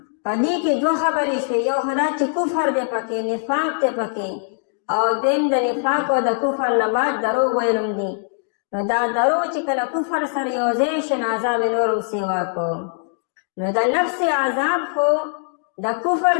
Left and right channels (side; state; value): right; silent; 65 dB below the other